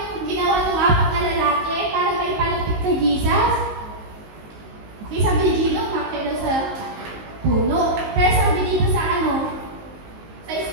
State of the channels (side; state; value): left; late; 19 ms